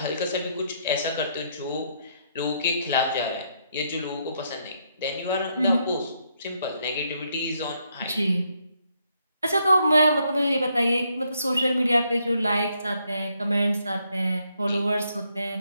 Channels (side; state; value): both; inverted; correlation -0.74